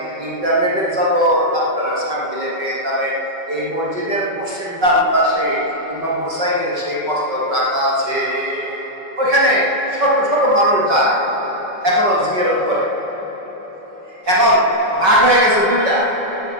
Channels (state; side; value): late; left; 5.3 ms